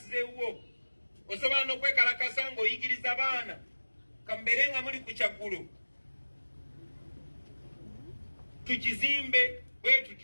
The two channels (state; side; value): inverted; both; correlation -1.00